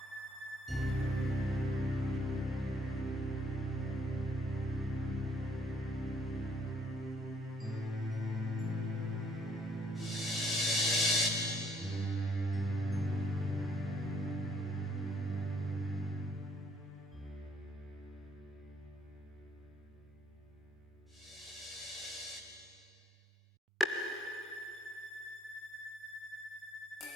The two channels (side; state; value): both; normal; correlation 0.65